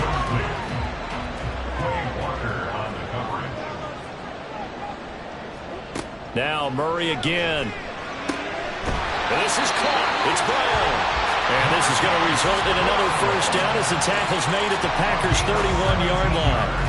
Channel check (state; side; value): identical; both; correlation 1.00